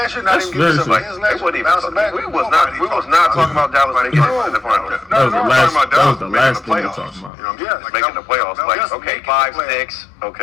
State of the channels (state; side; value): drops out; right; at 7.3 s